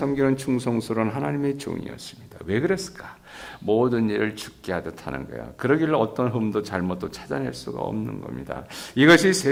충성스러운 하나님의 종이었습니다. 왜 그랬을까? 모든 일을 죽게 하듯 하는 거야. 그러길래 어떤 흠도 잘못도 찾아낼 수가 없는 겁니다. 이것이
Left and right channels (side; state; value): both; identical; correlation 1.00